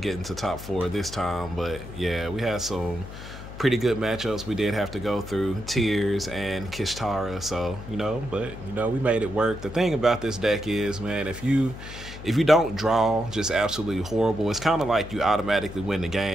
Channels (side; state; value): left; noise; hum, 12 dB below the sound